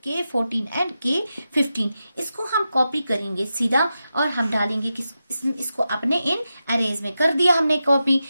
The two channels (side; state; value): both; inverted; correlation -0.90